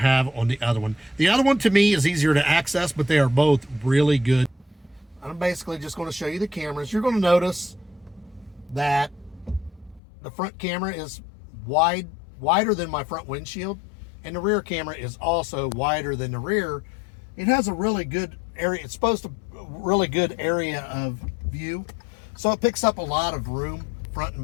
on the other one. The other one, to me, is easier to access, but they are both really good. I'm basically just going to show you the cameras. You're going to notice that the front camera is wider than my front windshield, and the rear camera is also wider than the rear. It has a really good area. It's supposed to really good area of view, so it picks up a lot of room front and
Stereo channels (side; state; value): right; drops out; at 10.0 s